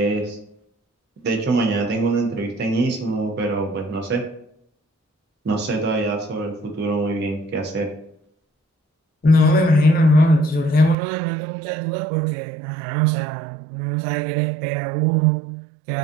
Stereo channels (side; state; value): left; drops out; at 11.0 s